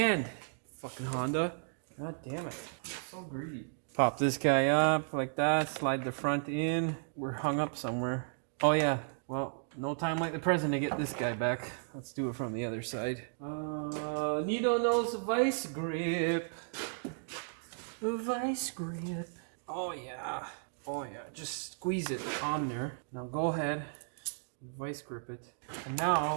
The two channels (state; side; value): silent; left; digital silence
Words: fucking Honda. God damn it, I'm so greedy. Pop this guy up like that, slide the front in. We're hung up somewhere. Oh yeah, well, no time like the present to get this guy back. Let's do it from the other side. Needle nose vice grip. Vice grip. Oh yeah. Oh yeah. Just squeeze it on there. Now go ahead. Vice grip it. And